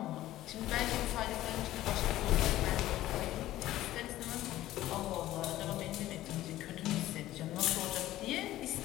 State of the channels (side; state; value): right; quieter; 14.8 dB